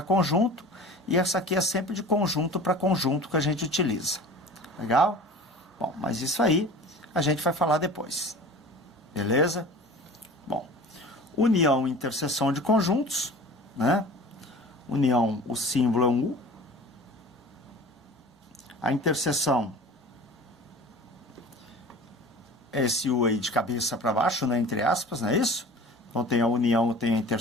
conjunto, e essa aqui é sempre de conjunto para conjunto que a gente utiliza. Legal? Bom, mas isso aí a gente vai falar depois. Beleza? Bom, união e interseção de conjuntos, né? União, o símbolo é um U. A interseção é esse U aí de cabeça para baixo, né? Entre aspas, não é isso? Então tem a união, tem a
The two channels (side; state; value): both; normal; correlation 0.40